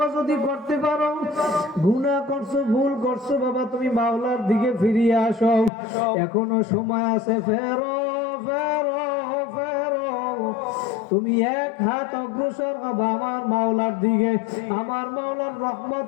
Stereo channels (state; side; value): drops out; right; at 5.7 s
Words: যদি করতে পারো, গুনাহ করছো, ভুল করছো, বাবা তুমি মাওলার দিকে ফিরিয়ে আসো, এখনো সময় আছে। ফেরো ফেরো ফেরো, তুমি এক হাত অগ্রসর হবে আমার মাওলার দিকে। আমার মাওলার রহমত